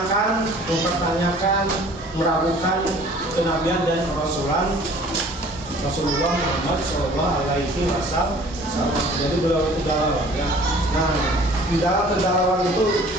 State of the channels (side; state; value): both; normal; correlation 0.50